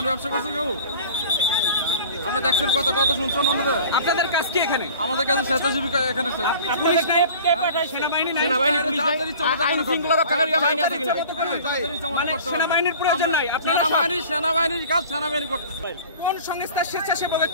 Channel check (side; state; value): both; inverted; correlation -0.44